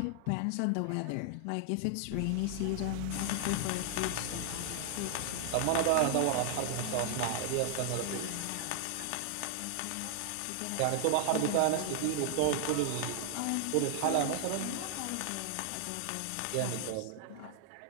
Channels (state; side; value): different; both; correlation 0.00